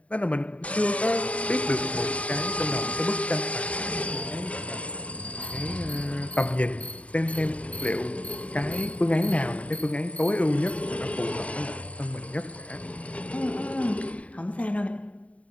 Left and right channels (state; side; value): late; right; 0.066 ms